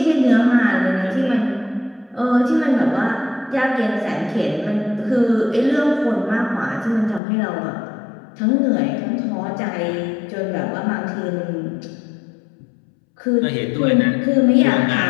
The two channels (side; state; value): right; drops out; at 7.2 s